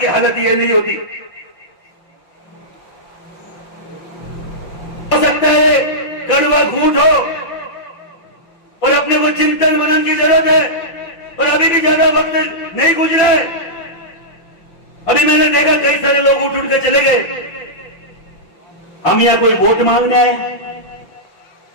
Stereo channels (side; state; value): right; late; 5.9 ms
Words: हालत ये नहीं होती। हो सकता है कड़वा घूंट हो और अपने को चिंतन मनन की जरूरत है, और अभी भी ज्यादा वक्त नहीं गुजरा है। अभी मैंने देखा कई सारे लोग उठ उठ के चले गए। हम यहाँ कोई वोट मांगने आए,